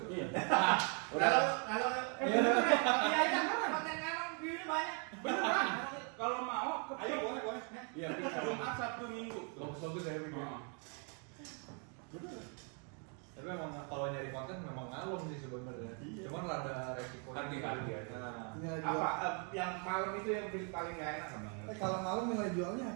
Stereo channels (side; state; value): left; quieter; 38.8 dB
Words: Iya. Kalau iya konten ngalong view-nya banyak. Beneran? Kalau mau, Ayo boleh. Iya, Jumat, Sabtu, Minggu. bagus ya bikin. Oh. Tapi memang kalau nyari konten memang ngalong sih sebenarnya. Cuman rada resiko. Hati-hati aja. Nah, Nilai jual. apa yang malam itu yang paling nggak enak emang? Kalau malam nilai jualnya